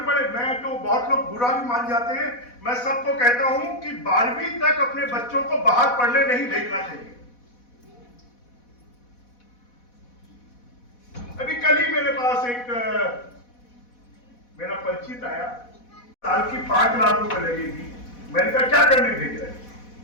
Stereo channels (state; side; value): late; right; 4.1 ms